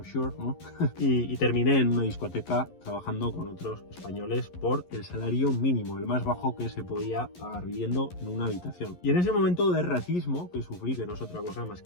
sure, ¿no? y terminé en una discoteca trabajando con otros españoles por el salario mínimo, el más bajo que se podía pagar viviendo en una habitación. Y en ese momento de racismo que sufrí, que no es otra cosa más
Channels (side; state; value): right; late; 11 ms